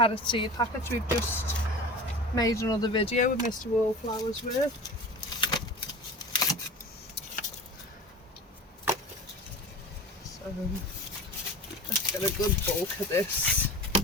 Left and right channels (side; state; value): both; normal; correlation 0.35